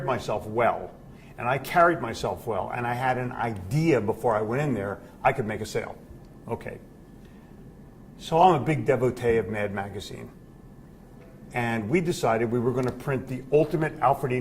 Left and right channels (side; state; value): both; identical; correlation 1.00